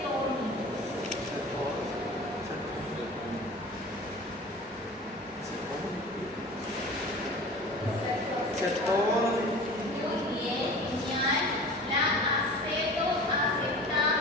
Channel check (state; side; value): normal; both; correlation 0.39